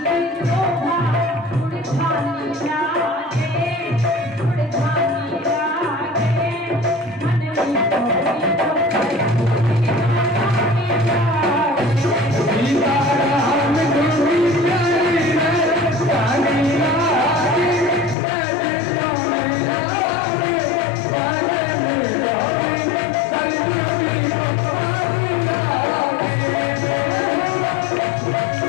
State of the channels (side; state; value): right; drops out; at 18.2 s